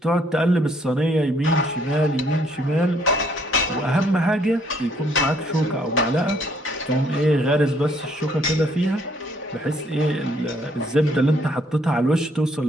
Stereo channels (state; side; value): normal; both; correlation 0.66